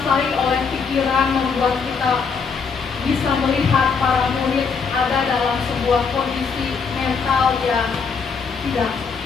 oleh pikiran membuat kita bisa melihat para murid ada dalam sebuah kondisi mental yang tidak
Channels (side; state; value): right; quieter; 5.5 dB